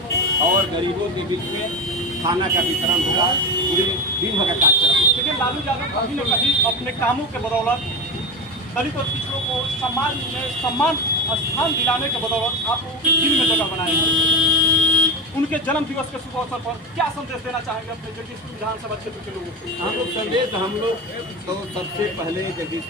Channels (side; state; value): both; normal; correlation 0.21